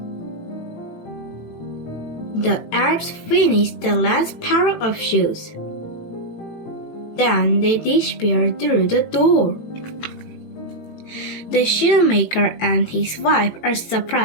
The elves finish the last pair of shoes. Then they disappear through the door. The shoemaker and his wife are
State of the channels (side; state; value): right; late; 18 ms